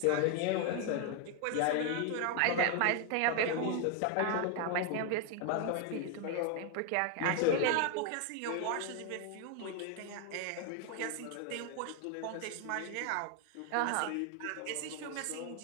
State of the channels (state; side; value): different; both; correlation 0.01